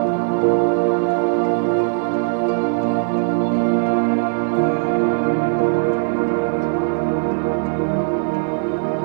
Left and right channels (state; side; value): silent; left; 66 dB below the other